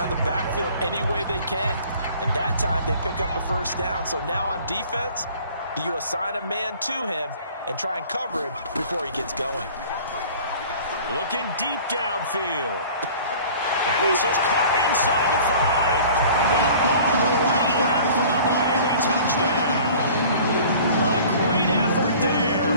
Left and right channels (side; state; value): both; inverted; correlation -0.47